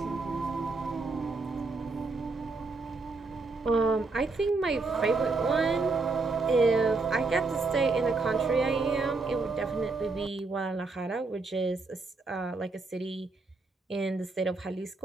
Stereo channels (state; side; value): quieter; left; 3.8 dB